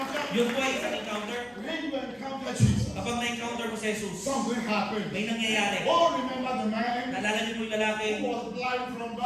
Yun po ay isang encounter. When you encounter Jesus, Kapag na-encounter mo si Jesus, something happened. may nangyayari. Oh, remember the man Naalala niyo po yung lalaki who was blind from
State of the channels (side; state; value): both; identical; correlation 1.00